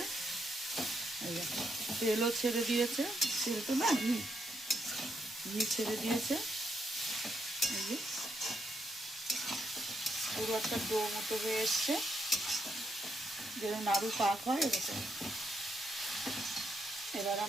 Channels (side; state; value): both; normal; correlation 0.78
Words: এই দেখো তেলও ছেড়ে দিয়েছে, তেল তো না ঘি ছেড়ে দিয়েছে। এই যে পুরো একটা ডো মতো হয়ে এসছে, যেরকম নাড়ু পাক হয় এরকম। এবার